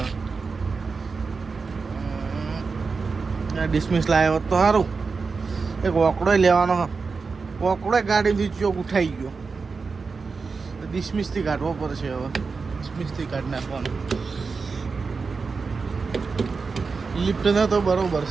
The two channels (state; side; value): quieter; left; 4.7 dB